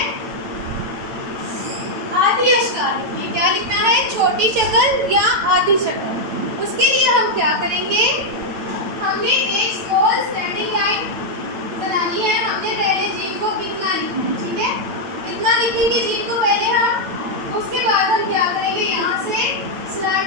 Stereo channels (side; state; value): left; late; 8.8 ms